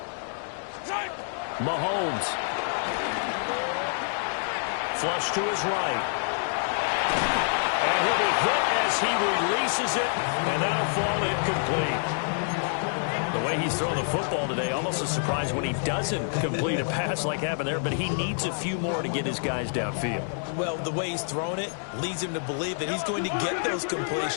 Mahomes. Flush to his right. And he'll be hit as he releases it, and that'll fall incomplete. The way he's throwing the football today, almost a surprise when he doesn't complete a pass like happened there, but he needs a few more to get his guys downfield. Well, the way he's thrown it leads him to believe that he's going to get those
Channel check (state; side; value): silent; right; digital silence